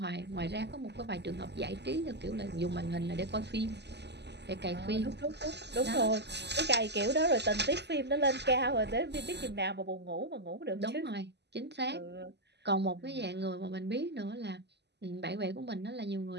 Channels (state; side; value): late; left; 0.50 ms